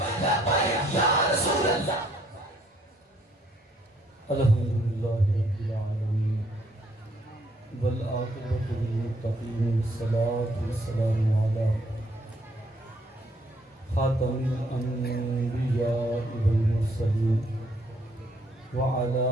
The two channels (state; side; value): normal; both; correlation 0.67